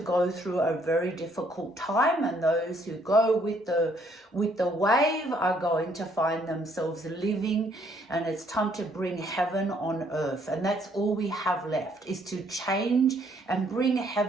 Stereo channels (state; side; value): normal; both; correlation 0.66